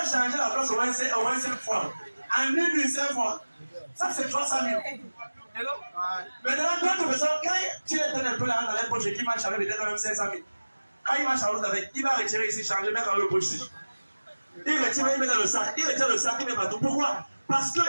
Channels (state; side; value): inverted; both; correlation -1.00